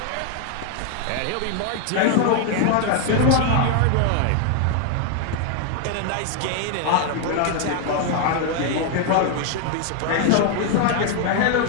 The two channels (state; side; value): different; both; correlation 0.01